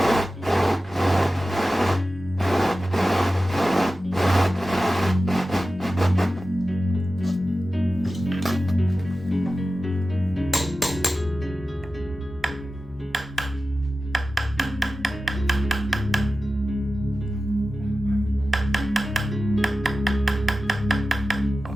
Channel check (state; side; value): normal; both; correlation 0.94